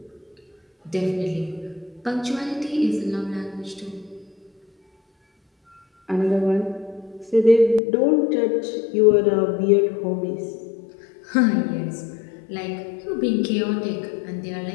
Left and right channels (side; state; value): right; drops out; at 7.8 s